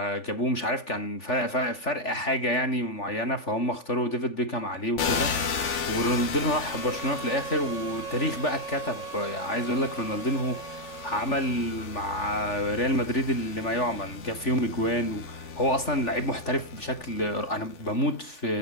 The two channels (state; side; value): late; right; 3.4 ms